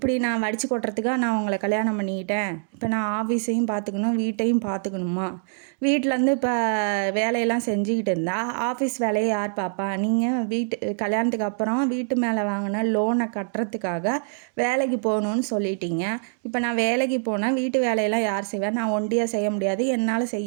நான் வடித்து கொட்டுறதுக்காக நான் உங்களை கல்யாணம் பண்ணிக்கிட்டேன், இப்போ நான் ஆஃபீஸையும் பார்த்துக்கணும் வீட்டையும் பார்த்துக்கணுமா, வீட்டிலேருந்து இப்போ வேலையெல்லாம் செஞ்சுக்கிட்டு இருந்தால் ஆஃபீஸ் வேலையை யார் பார்ப்பா? நீங்கள் கல்யாணத்துக்கு அப்புறம் வீட்டு மேலே வாங்கின லோனை கட்டுறதுக்காக வேலைக்கு போகணுன்னு சொல்லிட்டீங்க. இப்போ நான் வேலைக்கு போனால் வீட்டு வேலையெல்லாம் யார் செய்வேன்? நான் ஒண்டியாக செய்ய முடியாது, என்னால்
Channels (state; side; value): silent; left; digital silence